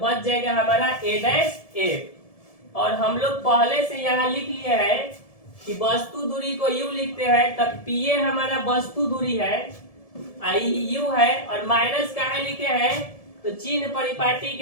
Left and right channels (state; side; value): late; right; 1.7 ms